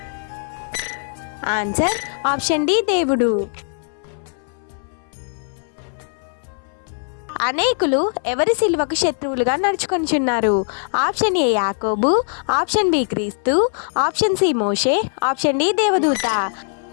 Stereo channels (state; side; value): silent; right; 63 dB below the other